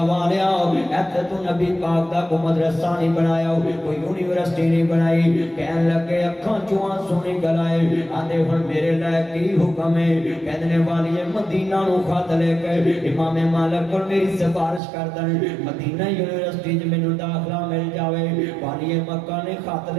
والیا ایتھے تو نبی پاک دا کوئی مدرسہ نہیں بنایا کوئی یونیورسٹی نہیں بنائی کہن لگے اکھاں چوں سونی گلائے آندے ہن میرے لائے کی حکم ہے کہندے نے والی مدینہ نو خط لے کے امام مالک کول میری سفارش کر دن مدینہ یونیورسٹی وچ مینوں داخلہ مل جاوے والی مکہ نے خط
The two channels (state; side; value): drops out; left; at 14.8 s